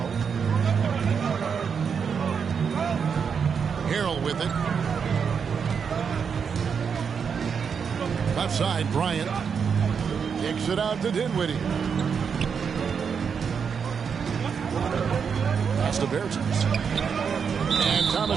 Harrell with it. Left side, Bryant. Kicks it out to Dinwiddie. Pass to Bertans. And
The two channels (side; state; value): left; quieter; 6.5 dB